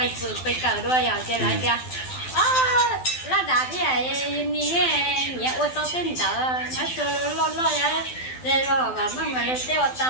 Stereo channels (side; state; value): right; late; 12 ms